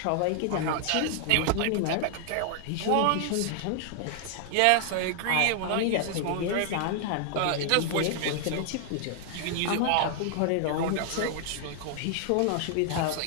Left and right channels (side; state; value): both; different; correlation 0.00